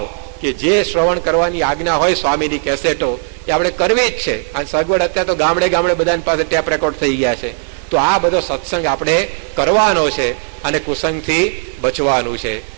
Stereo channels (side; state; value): left; silent; digital silence